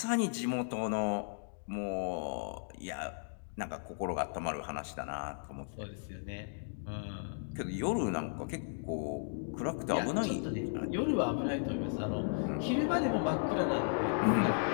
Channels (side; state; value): right; silent; digital silence